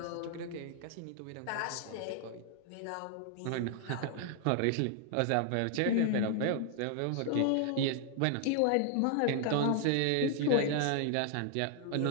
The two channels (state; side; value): different; both; correlation 0.00